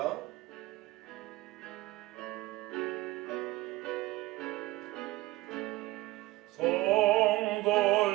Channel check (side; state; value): left; quieter; 19.0 dB